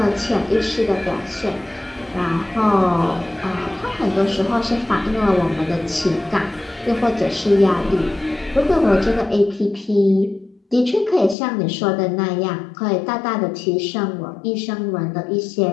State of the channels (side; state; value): right; drops out; at 11.4 s